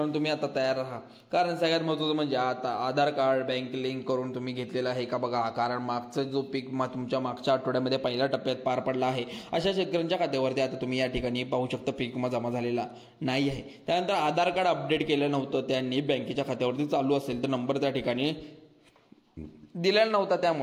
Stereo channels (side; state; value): both; identical; correlation 1.00